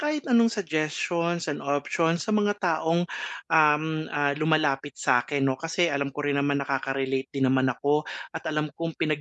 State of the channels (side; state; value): both; identical; correlation 1.00